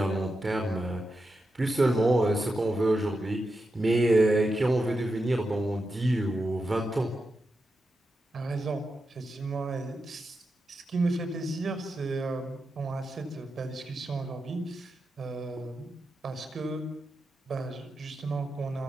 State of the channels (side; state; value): both; normal; correlation 0.88